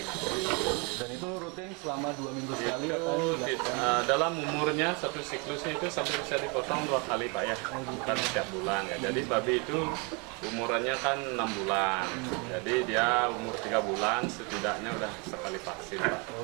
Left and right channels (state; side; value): quieter; left; 31.9 dB